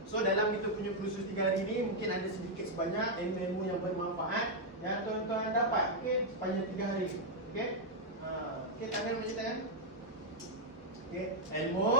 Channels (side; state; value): both; normal; correlation -0.02